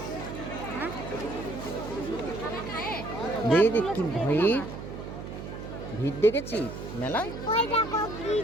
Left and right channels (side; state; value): right; noise; hum, 9 dB below the sound